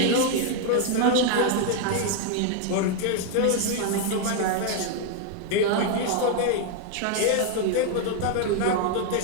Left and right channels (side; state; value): both; different; correlation 0.01